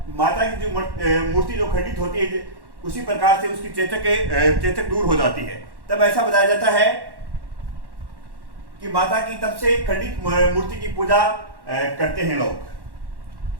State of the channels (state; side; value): late; left; 1.1 ms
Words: माता की जो मूर्ति जो खंडित होती है उसी प्रकार से उसकी चेतक दूर हो जाती है। तब ऐसा बताया जाता है कि माता की तब से खंडित मूर्ति की पूजा करते हैं लोग।